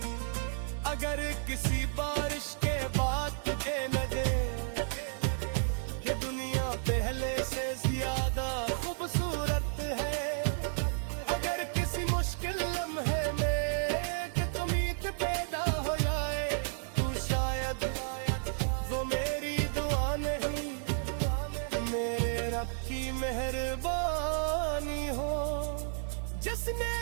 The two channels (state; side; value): silent; left; digital silence